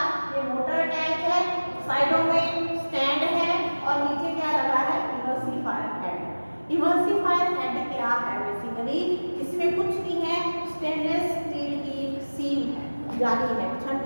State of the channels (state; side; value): inverted; both; correlation -1.00